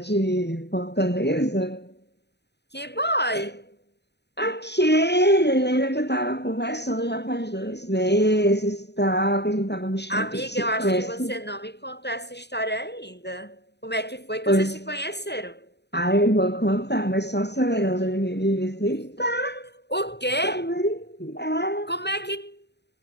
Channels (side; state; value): right; late; 0.49 ms